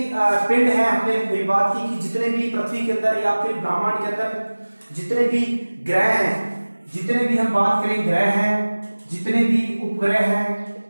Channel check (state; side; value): inverted; both; correlation -1.00